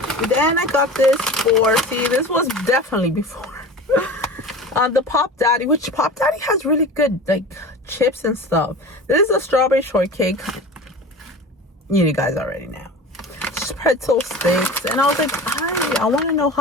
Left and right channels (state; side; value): normal; both; correlation 0.34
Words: Then I got this for, see, this was definitely before the Pop Daddy, which Pop Daddy has really good like chips and stuff. This is a strawberry shortcake. You guys already know. Pretzel sticks, and I was like, I want to know